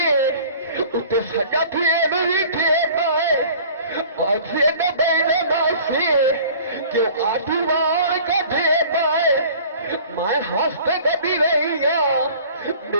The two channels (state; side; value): inverted; both; correlation -0.47